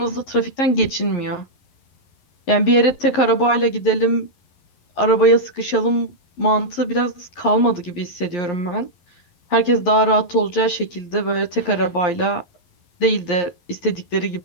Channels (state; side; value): late; right; 11 ms